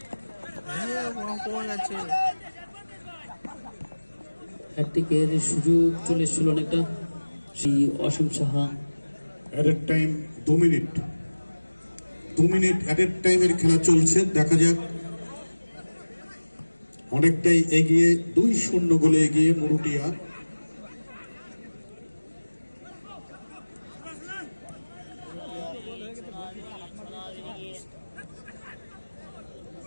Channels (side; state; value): both; inverted; correlation -1.00